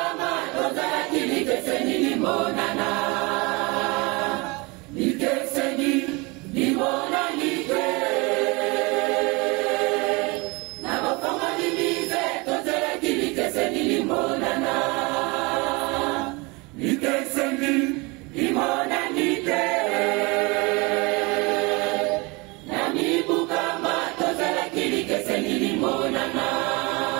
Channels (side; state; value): left; quieter; 26.7 dB